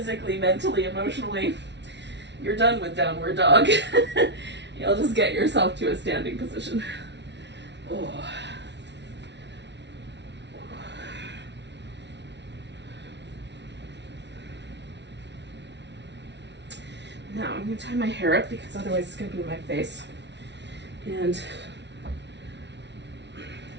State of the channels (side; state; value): left; late; 0.51 ms